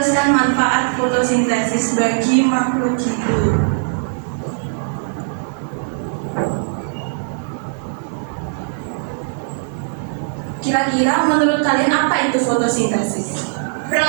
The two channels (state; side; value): silent; left; 66 dB below the other